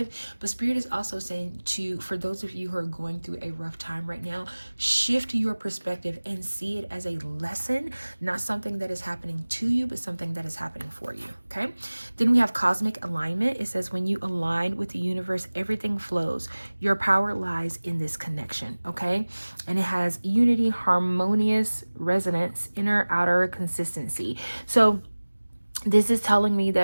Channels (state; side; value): inverted; both; correlation -1.00